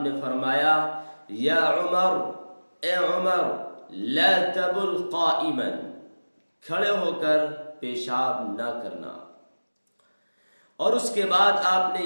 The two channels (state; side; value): inverted; both; correlation -1.00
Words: نے فرمایا، یا عمر، اے عمر، لا تبل قائما، کھڑے ہو کر پیشاب نہ کرنا۔ اور اس کے بعد آپ نے